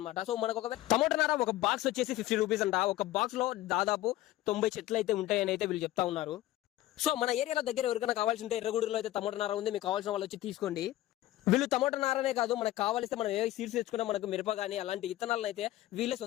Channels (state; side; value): quieter; right; 15.5 dB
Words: సో మనకు ఒక టమోటా నార ఒక బాక్స్ వచ్చేసి 50 రూపీస్ అంట. ఒక బాక్స్ లో దాదాపు 90 చెట్లు అయితే ఉంటాయని అయితే వీళ్ళు చెప్తా ఉన్నారు. సో మన ఏరియాలో దగ్గర ఎవరికైనా కావాల్సి ఉంటే ఎర్రగూడూరులో అయితే టమోటా నార ఉంది. మీకు కావాల్సిన వాళ్ళు వచ్చి తీసుకోండి. వీళ్ళు టమోటా నారనే కాదు, మనకు కావాలిస్తే మనం ఏ సీడ్స్ తెచ్చుకున్నా మనకు మిరప కానీ అలాంటి విత్తనాలను అయితే వీళ్ళే